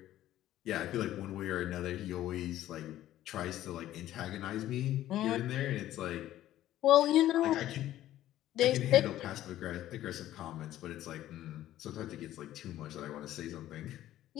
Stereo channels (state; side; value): quieter; right; 13.5 dB